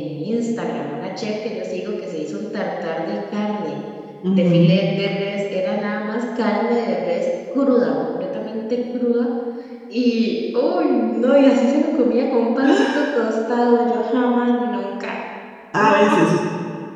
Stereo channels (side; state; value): both; identical; correlation 1.00